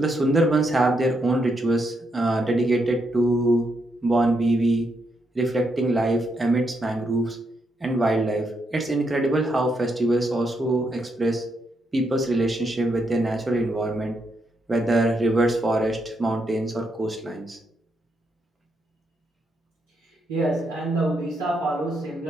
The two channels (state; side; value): normal; both; correlation 0.79